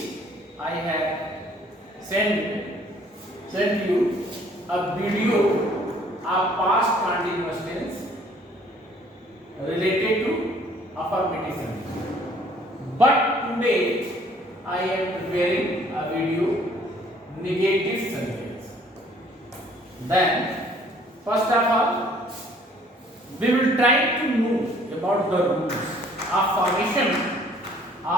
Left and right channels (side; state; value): both; normal; correlation 0.59